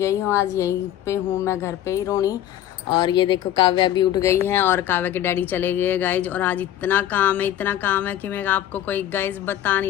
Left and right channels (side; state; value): right; quieter; 11.9 dB